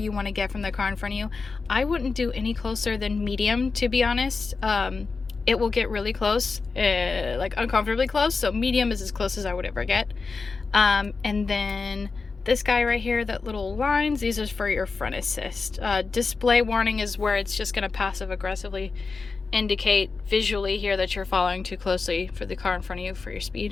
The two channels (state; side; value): quieter; right; 4.4 dB